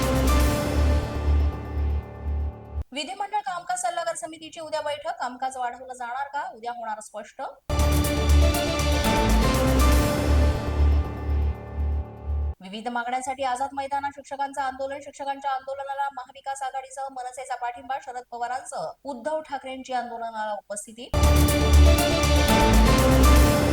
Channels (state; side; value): identical; both; correlation 1.00